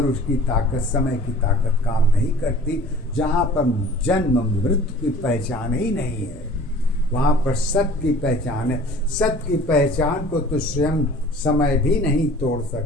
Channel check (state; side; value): normal; both; correlation 0.47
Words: उसकी ताकत, समय की ताकत काम नहीं करती। जहाँ पर जन्म मृत्यु की पहचान ही नहीं है वहाँ पर सत्य की पहचान है। सत्य की पहचान को तो स्वयं समय भी नहीं तोड़